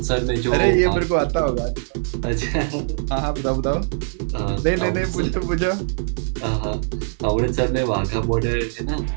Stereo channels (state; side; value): silent; left; digital silence